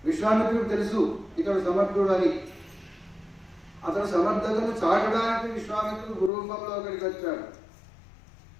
విశ్వామిత్రుడు తెలుసు ఇతడు సమర్థుడు అని. అతడు సమర్థతను చాటడానికి విశ్వామిత్రుడు గురురూపంలో అక్కడికి వచ్చాడు.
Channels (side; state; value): right; drops out; at 6.3 s